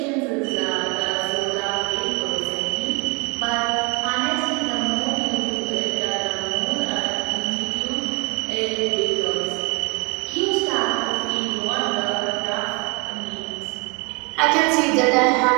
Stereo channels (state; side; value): quieter; left; 30.5 dB